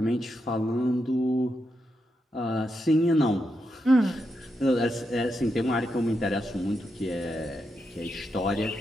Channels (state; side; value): normal; both; correlation 0.84